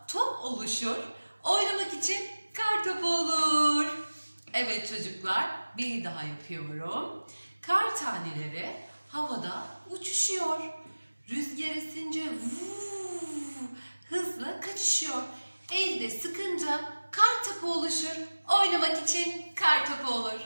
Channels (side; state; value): both; inverted; correlation -1.00